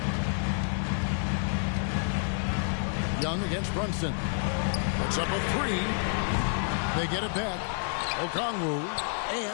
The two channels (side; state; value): right; silent; 58 dB below the other